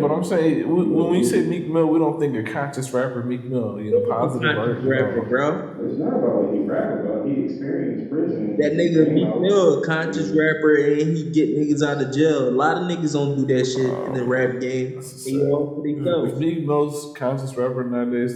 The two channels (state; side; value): identical; both; correlation 1.00